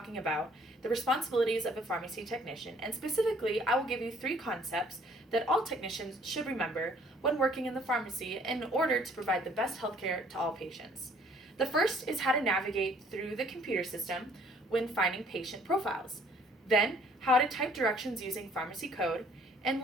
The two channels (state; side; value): normal; both; correlation 0.59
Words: about the responsibilities of a pharmacy technician, and specifically, I will give you 3 concepts that all technicians should remember when working in the pharmacy in order to provide the best healthcare to all patients. The first is how to navigate through the computer system when finding patient profiles. Then, how to type directions using pharmacy code. And